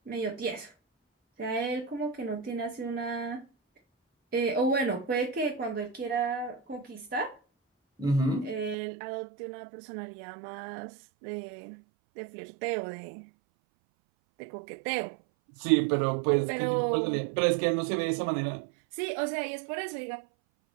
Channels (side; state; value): left; drops out; at 8.8 s